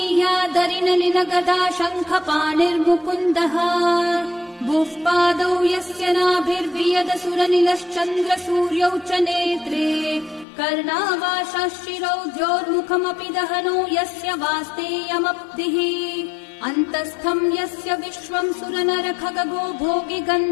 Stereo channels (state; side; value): drops out; right; at 10.5 s